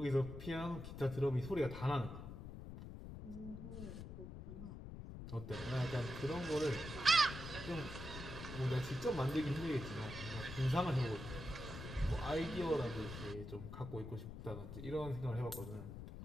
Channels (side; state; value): left; noise; rumble, 9 dB below the sound